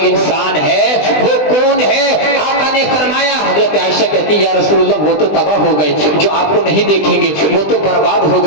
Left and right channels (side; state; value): right; late; 20 ms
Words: انسان ہے، وہ کون ہے؟ آقا نے فرمایا، حضرت عائشہ کہتی یا رسول اللہ وہ تو تباہ ہو گئے جو آپ کو نہیں دیکھیں گے، وہ تو برباد ہو